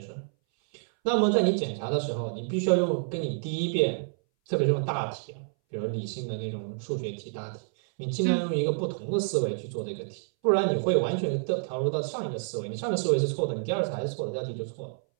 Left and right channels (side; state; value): left; silent; 59 dB below the other